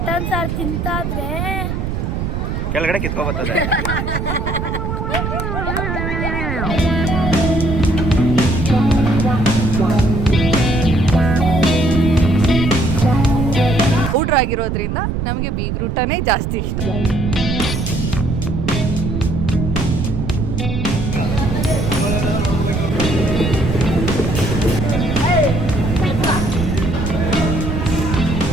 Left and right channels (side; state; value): right; noise; rumble, 2 dB below the sound